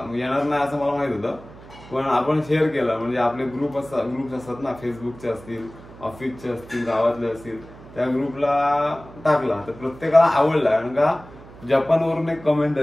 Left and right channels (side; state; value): right; noise; hum, 19 dB below the sound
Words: नाही असं मला माहित होतं। पण आपण शेअर केला, म्हणजे आपले ग्रुप्स असतात ना, फेसबुकचे असतील, ऑफिसचे असतील, गावातले असतील, त्या ग्रुपला टाकला तर प्रत्येकाला आवडला। कारण का जपानवरून एक कमेंट